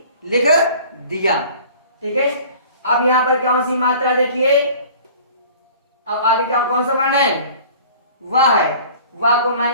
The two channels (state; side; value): inverted; both; correlation -0.46